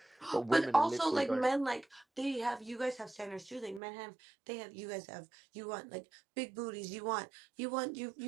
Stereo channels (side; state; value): left; drops out; at 3.8 s